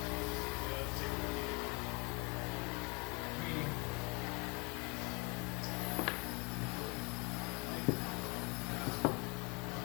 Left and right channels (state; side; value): quieter; right; 30.3 dB